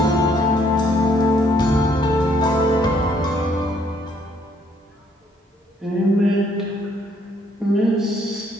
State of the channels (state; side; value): normal; both; correlation 0.67